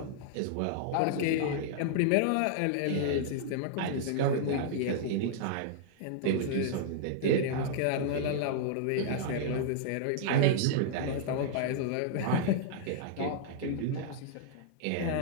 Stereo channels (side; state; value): both; different; correlation -0.01